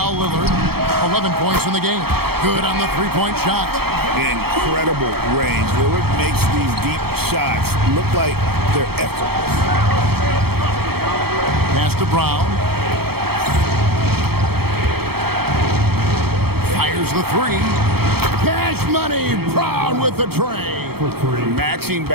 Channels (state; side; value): late; left; 0.96 ms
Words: Lillard, 11 points in the game. Good on the three-point shot. Incredible range. Lillard makes these deep shots look like they're effortless. Pass to Brown. Fires the 3. Cash money. Brown with the tray. for three. Matching